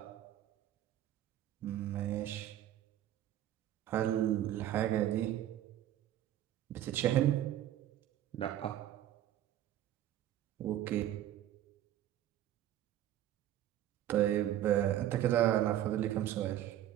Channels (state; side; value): quieter; left; 12.3 dB